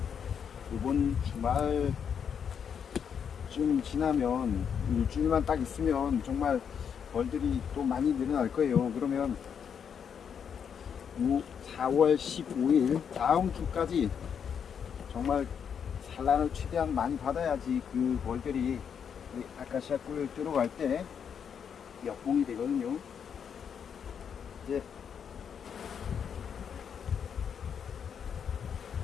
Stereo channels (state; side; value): quieter; right; 7.5 dB